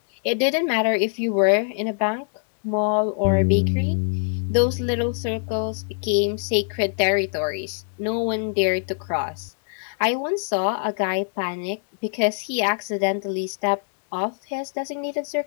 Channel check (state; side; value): silent; right; 63 dB below the other